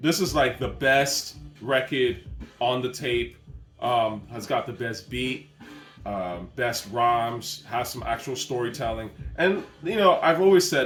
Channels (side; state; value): both; identical; correlation 1.00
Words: This is like the best record on the tape. Has got the best beat, best rhymes, has some actual storytelling. And, you know, I've always